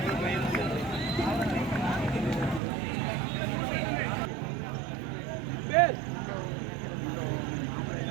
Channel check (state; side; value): drops out; left; at 2.6 s